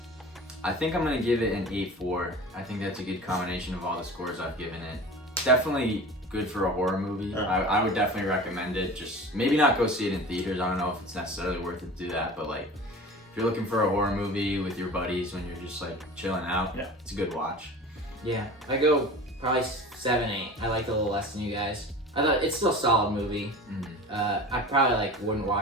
I think I'm gonna give it an 8.4. I think that's a good combination of all the scores I've given it. Definitely good for a horror movie. I would definitely recommend it. Just maybe not go see it in theaters. I don't know if it's necessarily worth it to do that, but like if if you're looking for a horror movie with your buddies when you're just like chilling out, Yeah. it's a good watch. Yeah, I go probably 7, 8. I liked it a little less than you guys. I thought it's still a solid movie. I probably like wouldn't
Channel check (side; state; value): both; normal; correlation 0.37